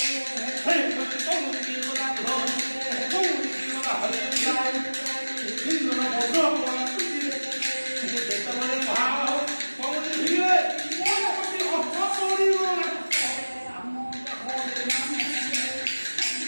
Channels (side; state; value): both; inverted; correlation -1.00